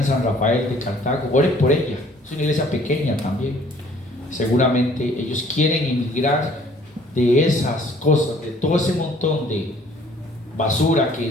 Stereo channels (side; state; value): both; normal; correlation 0.57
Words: San Rafael de Cartago, oren por ella. Es una iglesia pequeña también. Seguramente ellos quieren emigrar de esas cosas, de todo ese montón de basura que